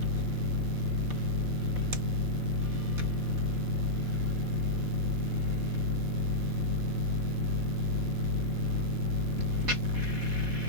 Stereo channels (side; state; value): left; late; 3.9 ms